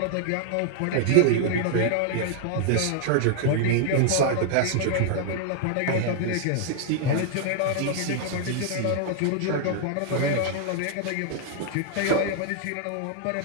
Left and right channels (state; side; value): different; both; correlation 0.00